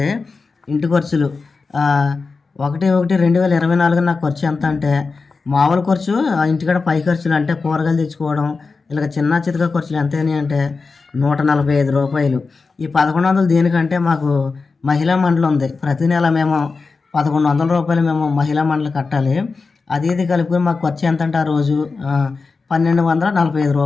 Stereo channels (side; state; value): right; quieter; 4.3 dB